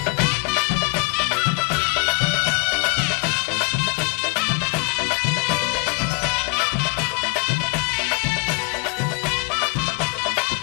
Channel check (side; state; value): right; quieter; 30.3 dB